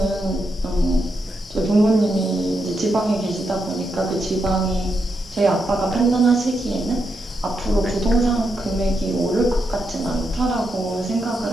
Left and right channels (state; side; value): normal; both; correlation 0.83